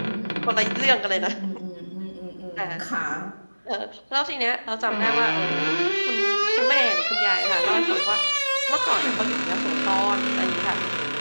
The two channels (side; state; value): both; inverted; correlation -1.00